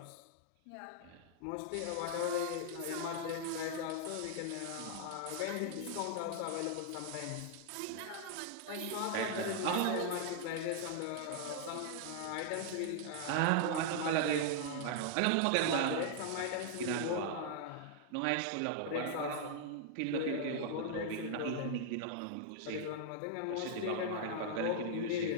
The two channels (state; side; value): different; both; correlation -0.01